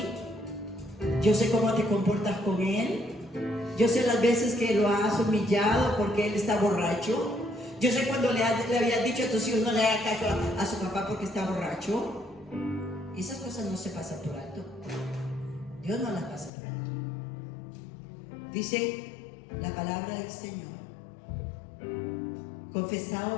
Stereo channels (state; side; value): drops out; right; at 16.5 s